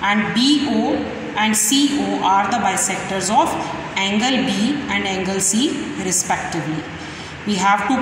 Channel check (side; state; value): both; identical; correlation 1.00